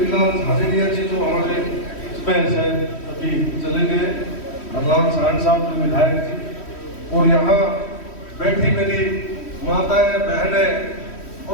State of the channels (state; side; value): late; right; 3.1 ms